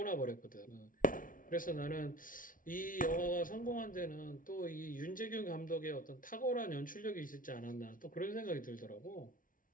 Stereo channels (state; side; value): late; right; 0.39 ms